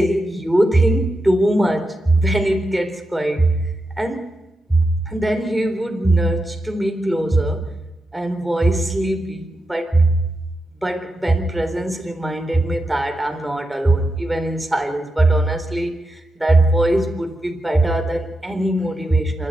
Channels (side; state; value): both; normal; correlation 0.87